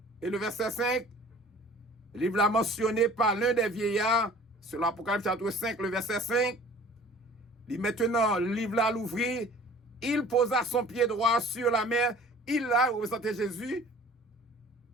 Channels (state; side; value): normal; both; correlation 0.48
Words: et le verset 5. Le livre là mentionné par l'un des vieillards, c'est l'Apocalypse chapitre 5, le verset 5. Il maintenant, le livre là l'ouvrit, il posa son pied droit sur la mer, il a représenté Jésus,